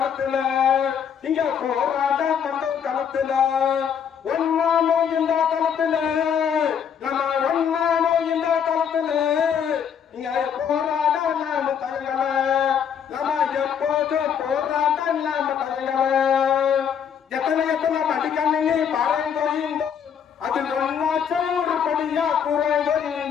இங்க போராட்ட பண்றோம் களத்துல. ஒன்னானோ இந்த களத்துல, நம்ம ஒன்னானோ இந்த களத்துல. இங்க போராட நாம தயங்கல, நம்ம எப்போதும் போராட்ட நாம தயங்கல. எத்தனை எத்தனை மடிக்கணினி பாறைந்தோயிந்தோ, அதில் ஒன்னாச்சும் ஒரு படியா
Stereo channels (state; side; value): quieter; right; 7.8 dB